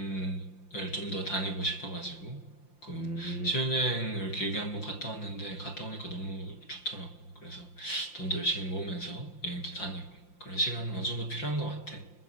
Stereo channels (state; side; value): late; right; 5.8 ms